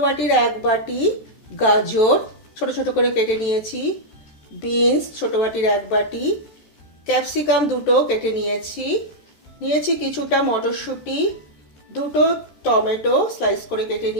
বাটির 1 বাটি গাজর ছোট ছোট করে কেটে বিনস ছোট বাটির 1 বাটি, ক্যাপসিকাম দুটো কেটে নিয়েছি কিছুটা মটরশুঁটি, দুটো টমেটো স্লাইস করে কেটে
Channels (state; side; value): late; right; 14 ms